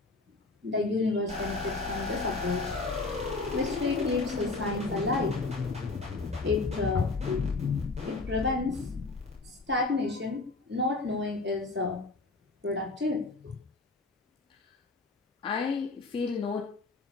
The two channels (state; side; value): quieter; right; 3.5 dB